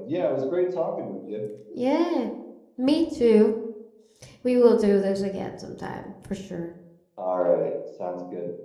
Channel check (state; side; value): identical; both; correlation 1.00